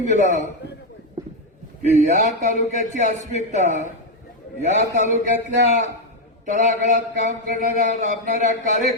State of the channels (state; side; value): normal; both; correlation 0.03